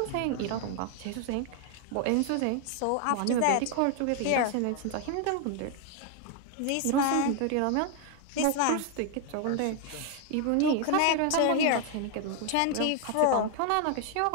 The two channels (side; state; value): both; different; correlation 0.00